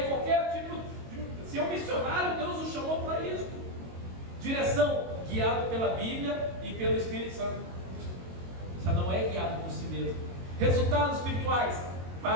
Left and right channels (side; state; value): left; late; 22 ms